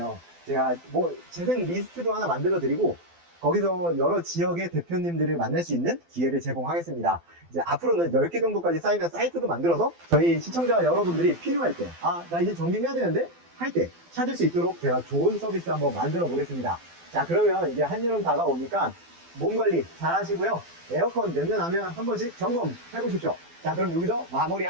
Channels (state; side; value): late; left; 12 ms